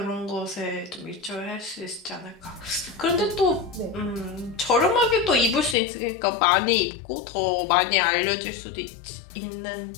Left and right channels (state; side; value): drops out; right; at 5.8 s